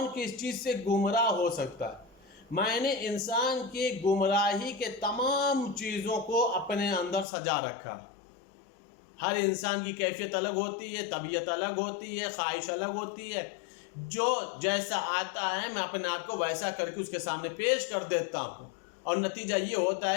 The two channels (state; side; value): drops out; right; at 7.2 s